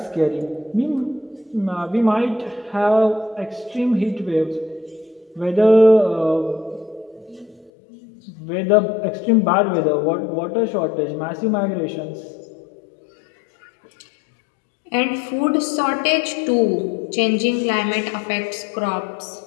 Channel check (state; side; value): drops out; right; at 7.7 s